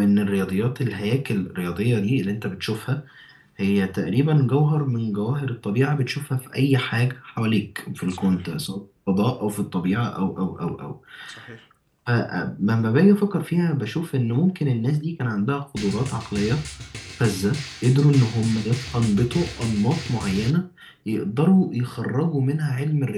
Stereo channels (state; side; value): identical; both; correlation 1.00